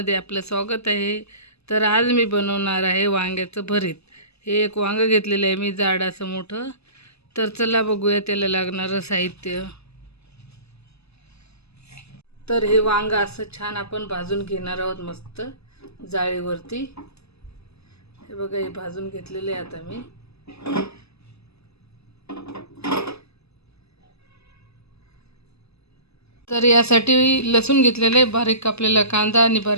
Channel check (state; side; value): late; right; 0.79 ms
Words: आपलं स्वागत आहे. तर आज मी बनवणार आहे वांग्याचं भरीत. हे एक वांगं घेतलेलं आहे मी, जाड असं मोठं. तर चला बघूया त्याला लागणारं साहित्य. तर हे वांगं असं छान आपण भाजून घेणार आहोत मस्त जाळीवरती. हे बघा, हे भाजून घेतलेले आहे आता मी. तर यासाठी लसूण घेतलेलं आहे, बारीक कापलेला कांदा आणि